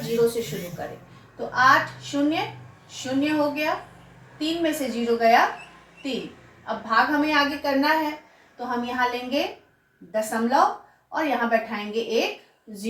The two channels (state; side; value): identical; both; correlation 1.00